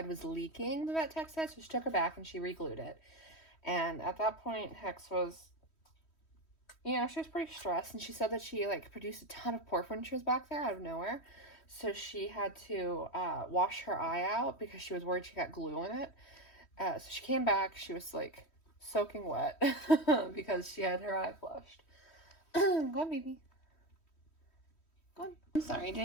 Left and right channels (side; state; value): right; late; 3.1 ms